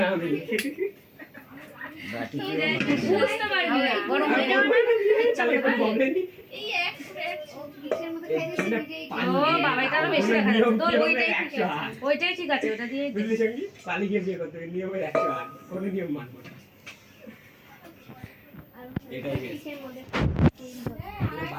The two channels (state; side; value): identical; both; correlation 1.00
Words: আমি। বাটি দিয়ে বুঝতে পারবি না গরম হয়ে যাবে চালে কোনো বলেনি। এই এক কিসের মধ্যে খাই দিছি ও বাবা এটা আরো বেশি দেখা যাচ্ছে তোর ওইটাই ঠিক 100 আছে ওইটাই ঠিক আছে ওটা দিয়ে বুঝলি সঙ্গী, পালি গিয়ে বিয়ে করতে হবে, নিয়মের 108, কোনো নিয়ম মানবো না। এটাই বেশ।